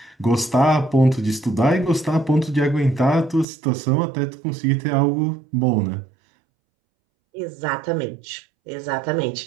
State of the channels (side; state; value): left; drops out; at 3.5 s